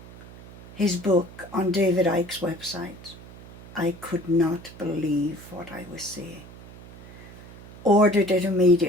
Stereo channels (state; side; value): noise; right; hum, 17 dB below the sound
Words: his book on David Icke's website, I could not believe what I was seeing. Ordered it